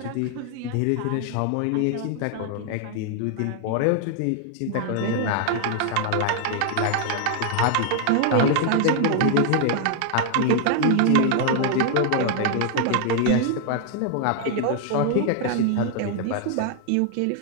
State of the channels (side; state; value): both; different; correlation 0.00